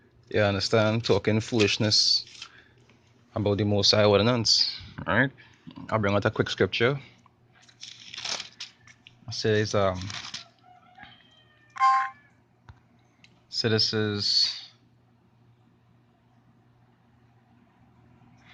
You understand? Talking foolishness about the Most High ordinance. Alright? I'll bring out a quick scripture. It says, so this is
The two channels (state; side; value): identical; both; correlation 1.00